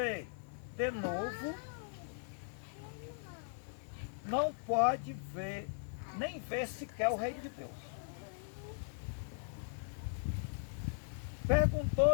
de novo, não pode ver, nem ver sequer o reino de Deus.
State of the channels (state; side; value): silent; right; 52 dB below the other